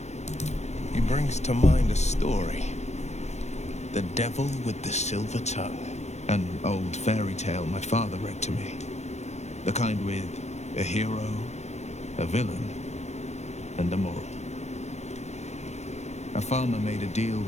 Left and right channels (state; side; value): late; right; 0.32 ms